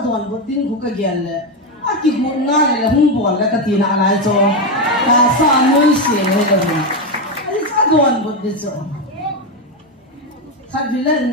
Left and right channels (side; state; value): both; normal; correlation 0.09